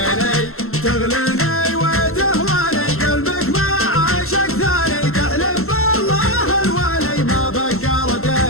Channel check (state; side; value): late; right; 0.62 ms